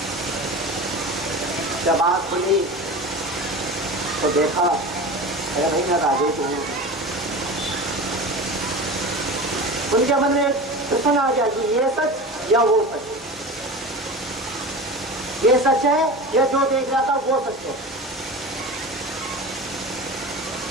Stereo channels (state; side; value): normal; both; correlation 0.30